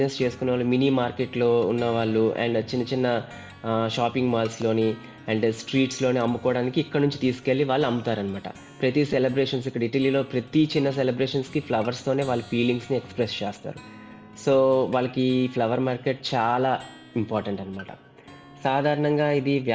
చేసుకునేవాళ్ళు మినీ మార్కెట్‌లో ఉన్నవాళ్ళు అండ్ చిన్న చిన్న షాపింగ్ మాల్స్‌లోని అండ్ స్ట్రీట్స్‌లోని అమ్ముకోవడానికి ఇక్కడ నుంచి తీసుకెళ్ళి వాళ్ళు అమ్ముతారనమాట. ప్రతి సెలబ్రేషన్స్ ఇక్కడ ఇటలీలో ప్రతి చిన్న సెలబ్రేషన్స్‌కి ఫ్లవర్స్‌తోనే వాళ్ళ ఫీలింగ్స్‌ని ఎక్స్‌ప్రెస్ చేస్తారు. సో, వాళ్ళకి ఈ ఫ్లవర్ మార్కెట్ చాలా ఇంపార్టెంట్ అనమాట. సాధారణంగా ఇది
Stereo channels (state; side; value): identical; both; correlation 1.00